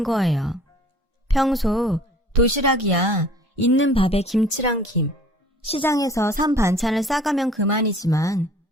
거예요. 평소 도시락이야 있는 밥에 김치랑 김, 시장에서 산 반찬을 싸가면 그만이지만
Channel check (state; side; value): normal; both; correlation 0.51